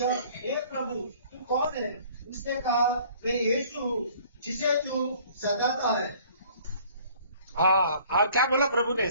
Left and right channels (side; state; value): both; inverted; correlation -0.54